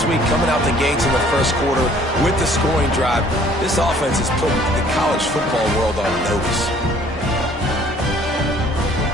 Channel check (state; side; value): normal; both; correlation 0.56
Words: week, coming out the gates in the first quarter with the scoring drive. This offense is putting the college football world on notice.